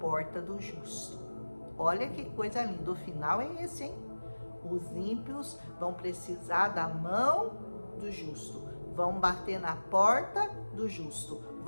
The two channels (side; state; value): both; inverted; correlation -1.00